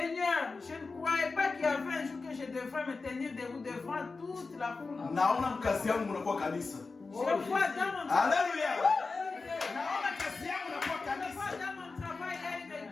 je ne croyais pas qu'il y avait un jour que je devrais me tenir debout devant toute la foule. Je vois dans mon... Alléluia. Je vois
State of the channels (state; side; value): quieter; right; 4.1 dB